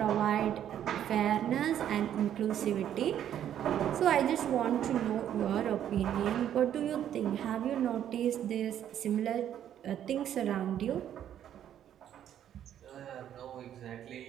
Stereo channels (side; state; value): left; quieter; 10.4 dB